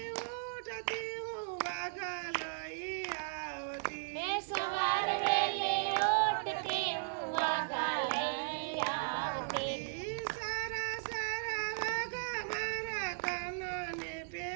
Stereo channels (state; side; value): silent; left; 53 dB below the other